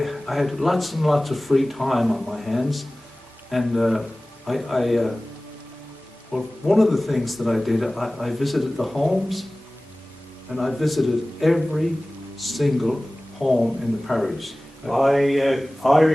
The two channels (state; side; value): normal; both; correlation 0.98